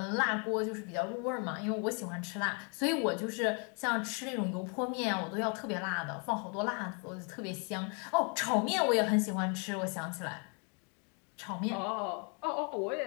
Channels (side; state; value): right; quieter; 36.6 dB